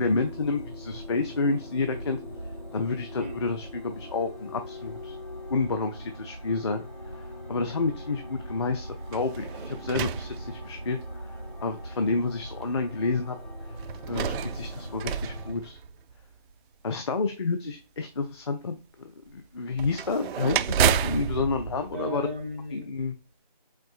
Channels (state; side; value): inverted; both; correlation -0.48